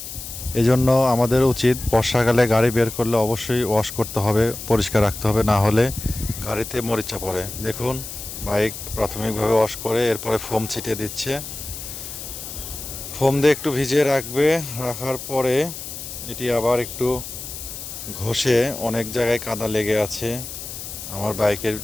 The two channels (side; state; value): left; noise; hiss, 10 dB below the sound